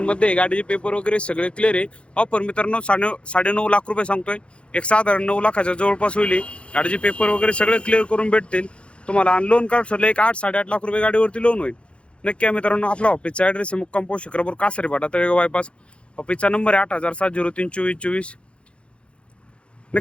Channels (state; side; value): late; right; 0.059 ms